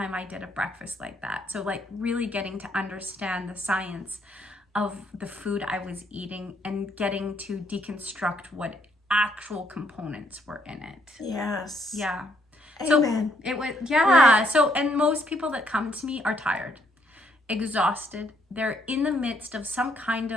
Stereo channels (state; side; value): normal; both; correlation 0.71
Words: I did a breakfast like that. So like really getting to understand the science of the food I was eating and getting to deconstruct what actual components were in it. Yes. Yeah. Amen. So it was, Right. So, and most people that come to me are tired, exhausted. They're in the midst of some kind